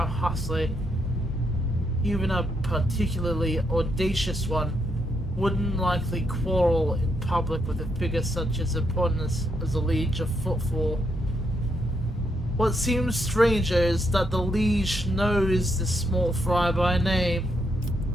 hustler, even a particularly audacious one, wouldn't likely quarrel in public with a figure such as important as the Liege of Footfall. What seems stranger is that the Liege knows this small fry by name.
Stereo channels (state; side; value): normal; both; correlation 0.78